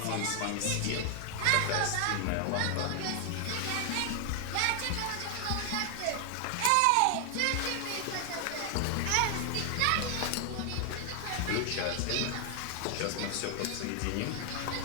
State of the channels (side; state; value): both; different; correlation 0.00